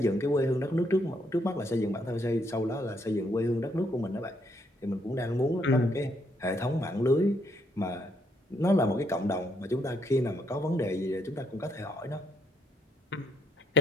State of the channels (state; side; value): normal; both; correlation 0.74